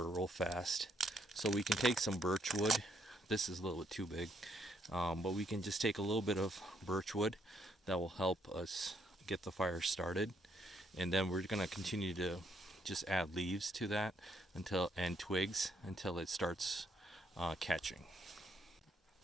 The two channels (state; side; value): normal; both; correlation 0.73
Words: real fast. So we can take some birch wood. This is a little bit too big, but we can just take a little bit of birch wood that will help us get the fire started, and then we're going to continue to just add leaves to that and twigs until it starts catching.